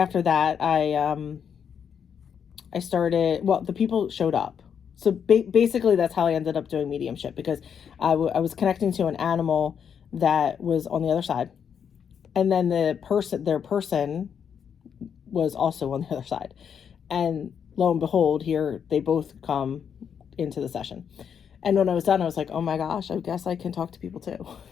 that, I started, well, the people showed up. So basically, that's how I ended up doing mediumship, because I was connecting to an animal that was on the other side. And then their person was also on the other side. And lo and behold, here they both come into the session. And when I was done, I was like, oh my gosh, I guess I can talk to people too.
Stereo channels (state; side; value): quieter; right; 7.6 dB